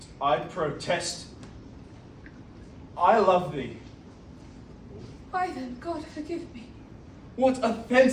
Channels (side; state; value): both; identical; correlation 1.00